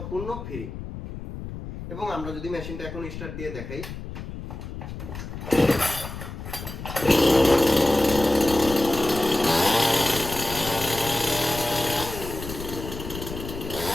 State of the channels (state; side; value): noise; left; rumble, 10 dB below the sound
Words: ফ্রি। এবং আমরা যদি মেশিনটা এখন স্টার্ট দিয়ে দেখাই,